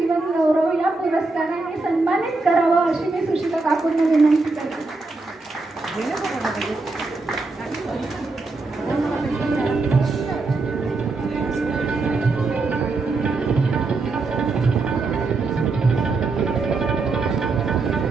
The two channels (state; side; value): quieter; left; 3.6 dB